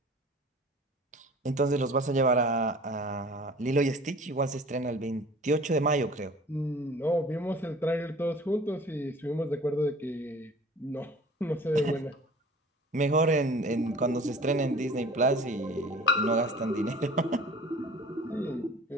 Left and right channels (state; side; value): normal; both; correlation 0.45